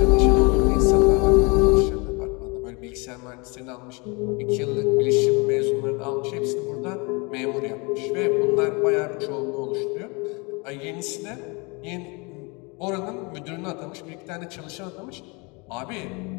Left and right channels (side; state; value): right; quieter; 29.1 dB